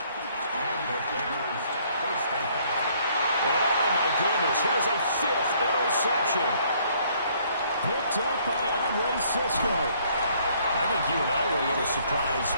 the Bears first down. Oh, my goodness. Here's a 5th interception. Picked up by Andre Sisco. I think you and I were a little surprised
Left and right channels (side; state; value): both; inverted; correlation -0.64